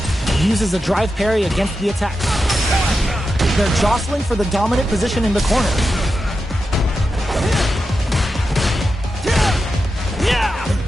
Uses a drive parry against the attack. They're jostling for the dominant position in the corner.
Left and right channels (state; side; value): normal; both; correlation 0.89